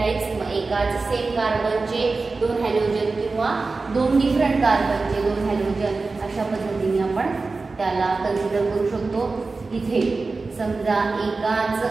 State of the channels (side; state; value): left; quieter; 3.9 dB